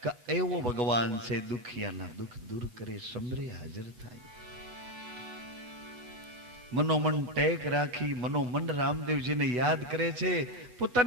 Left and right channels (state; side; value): late; left; 8.2 ms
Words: કે એવો ભગવાન છે દુખિયાના દુઃખ દૂર કરે, સમરે હાજર થાય. મનોમન ટેક રાખી મનોમન રામદેવજીને યાદ કરે છે.